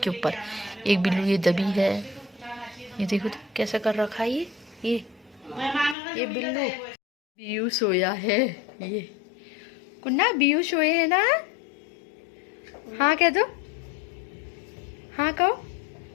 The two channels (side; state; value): right; drops out; at 6.0 s